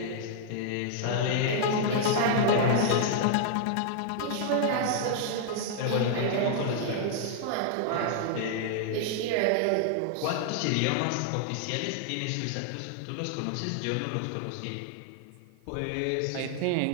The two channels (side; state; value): both; different; correlation -0.01